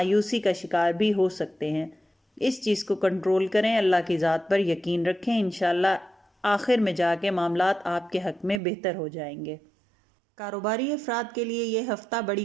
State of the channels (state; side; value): drops out; left; at 8.6 s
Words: کا شکار بھی ہو سکتے ہیں۔ اس چیز کو کنٹرول کریں، اللہ کی ذات پر یقین رکھیں، انشاءاللہ آخر میں جا کے معاملات آپ کے حق میں بہتر ہو جائیں گے۔ کاروباری افراد کے لیے یہ ہفتہ بڑی